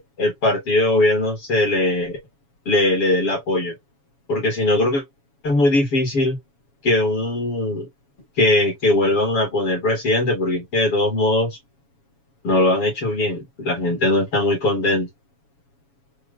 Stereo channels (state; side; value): late; right; 7.2 ms